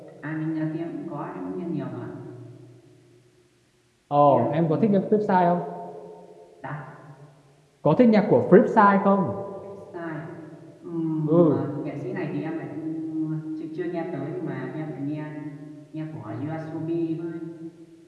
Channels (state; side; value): identical; both; correlation 1.00